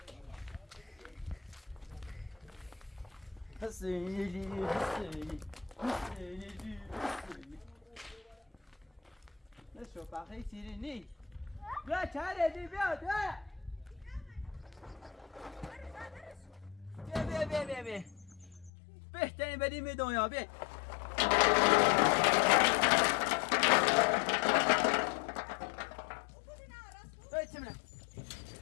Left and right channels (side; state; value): right; drops out; at 18.7 s